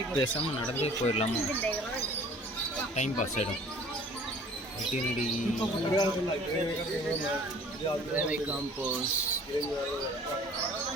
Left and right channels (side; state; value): both; normal; correlation 0.50